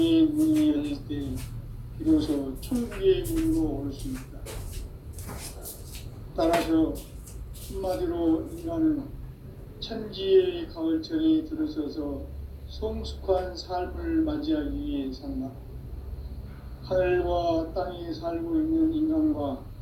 문이 열릴 때 비로소 천국의 문으로 올 수 있다. 따라서 한마디로 인간은 천지의 가을철에 들어서서 성숙한 삶을 맞이하기 위해 산다. 하늘과 땅에 살고 있는 인간과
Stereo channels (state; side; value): identical; both; correlation 1.00